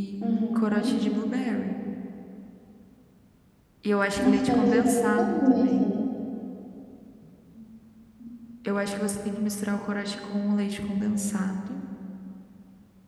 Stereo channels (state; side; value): identical; both; correlation 1.00